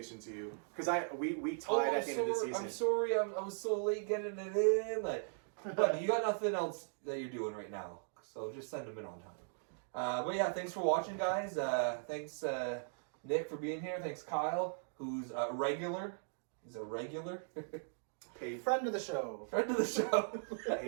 to you because we tied at the end of the season. I'm sorry. I was so late getting it in. Like, but you got nothing else that you're doing right now, so just send them in on time. But yeah, thanks for watching, guys. Thanks Nick for being here. Thanks Kyle, who's a regular. He's a regular. Paid. Friend of the show. Friend of the show.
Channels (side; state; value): left; silent; digital silence